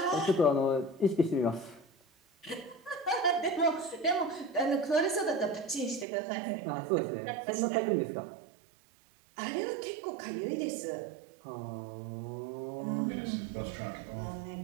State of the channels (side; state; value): left; drops out; at 6.1 s